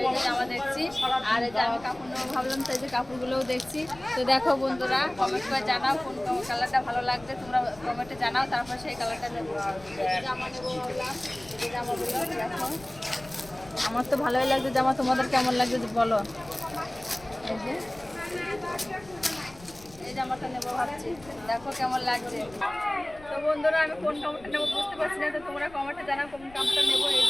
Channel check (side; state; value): left; noise; rumble, 22 dB below the sound